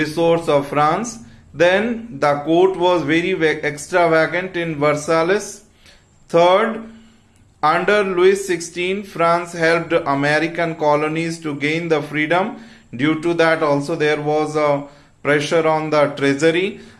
of France. Then the court was very extravagant in Versailles. Third, under Louis XVI, France helped American colonies to gain the freedom. Due to that also there was a pressure on the treasury.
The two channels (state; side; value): identical; both; correlation 1.00